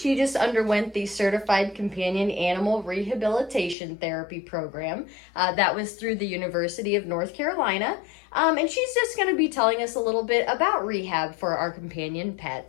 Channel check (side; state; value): right; drops out; at 3.8 s